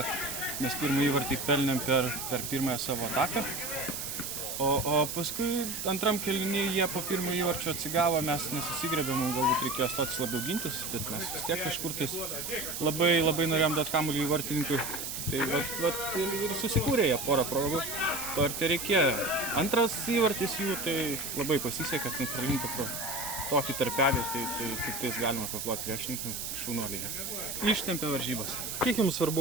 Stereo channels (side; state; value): right; noise; hiss, 5 dB below the sound